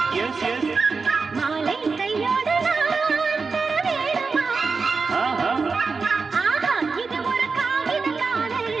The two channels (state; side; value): quieter; left; 4.6 dB